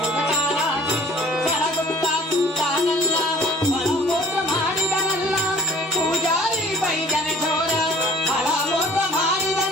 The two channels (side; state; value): both; normal; correlation 0.50